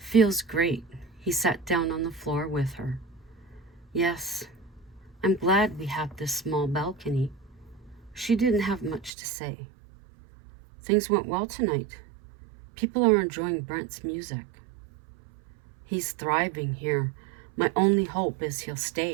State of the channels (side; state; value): left; drops out; at 9.1 s